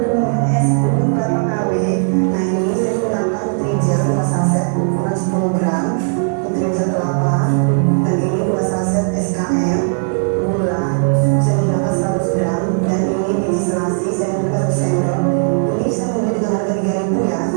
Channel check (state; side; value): silent; left; 59 dB below the other